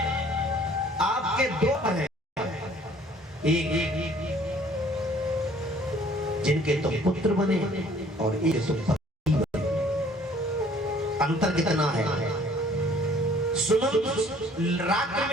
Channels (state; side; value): normal; both; correlation 0.56